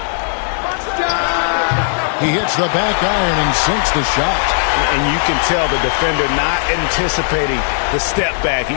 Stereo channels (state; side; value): silent; right; digital silence